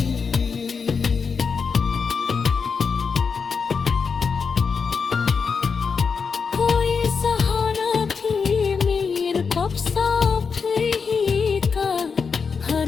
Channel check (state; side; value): quieter; right; 5.6 dB